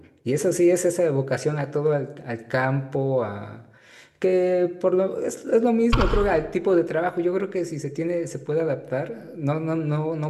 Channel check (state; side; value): identical; both; correlation 1.00